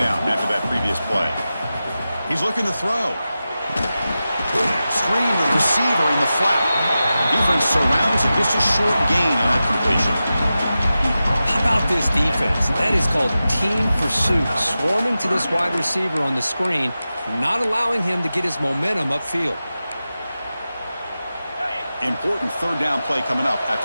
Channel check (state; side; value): inverted; both; correlation -0.93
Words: after that previous play. He's looking to throw. Screen with receiver in the flat. Defense surrounds him. Just a short gain on that completion. How about this defense? That is called team pursuit. Swarming to this wide receiver on the screen, not allowing him to get his momentum upfield. Important third down play coming up